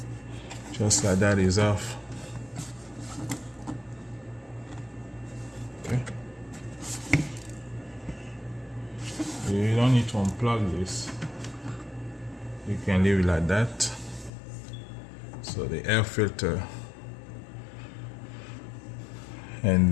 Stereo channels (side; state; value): right; drops out; at 14.3 s